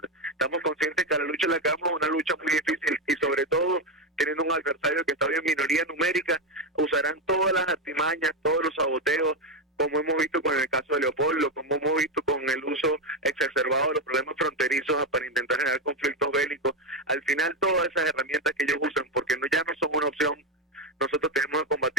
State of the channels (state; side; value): normal; both; correlation 0.09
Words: Estamos conscientes que la lucha en la cama es una lucha muy difícil, y sobre todo teniendo un adversario que está en minoría numérica, usarán todas las artimañas, todos los saboteos, como hemos visto con el caso de Leopoldo, como hemos visto con el uso exacerbado de los problemas fronterizos para intentar generar conflictos bélicos. Al final, todas esas herramientas que ellos usan, porque ya no son una opción, nosotros tenemos que